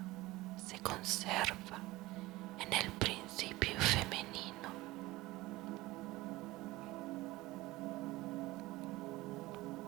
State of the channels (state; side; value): quieter; left; 19.2 dB